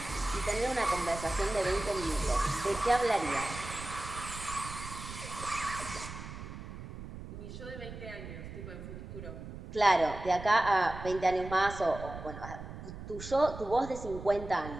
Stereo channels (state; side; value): noise; right; rumble, 11 dB below the sound